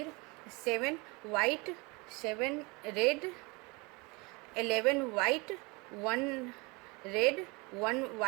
7 white 7 red, 11 white 1 red 1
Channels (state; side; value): quieter; left; 27.2 dB